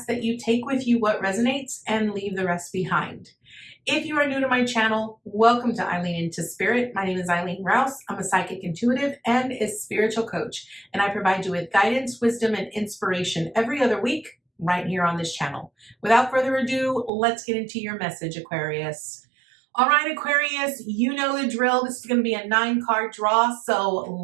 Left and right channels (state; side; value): drops out; left; at 17.1 s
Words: that you take with you what resonates and leave the rest behind. If you are new to my channel, welcome to Eileen Into Spirit. My name is Eileen Rouse. I'm a psychic intuitive and a spiritual coach, and I provide you with guidance, wisdom, and inspiration every other week right here on this channel. Without further ado, let's get into your message, Aquarius. All right, Aquarius, you know the drill. This is going to be a 9-card draw, so